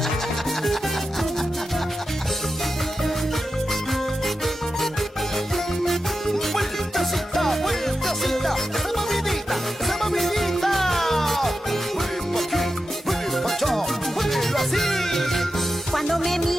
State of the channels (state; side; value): normal; both; correlation 0.90